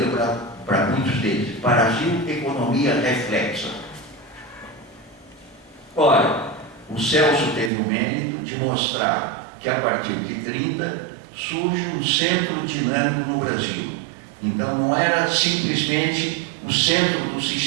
para muitos deles. Brasil, economia reflexa. Ora, o Celso teve o mérito de mostrar que a partir de 30 surge um centro dinâmico no Brasil. Então não era simplesmente o centro do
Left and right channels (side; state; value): left; drops out; at 7.7 s